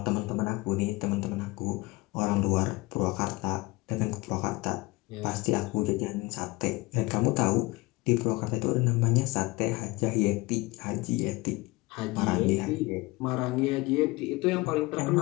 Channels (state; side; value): quieter; right; 22.7 dB